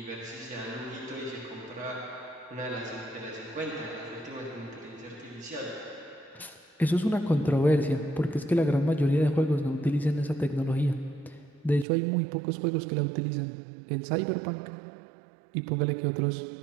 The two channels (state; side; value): drops out; left; at 11.9 s